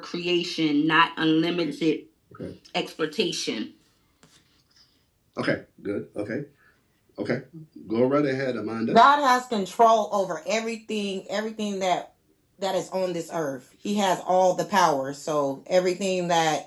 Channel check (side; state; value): both; identical; correlation 1.00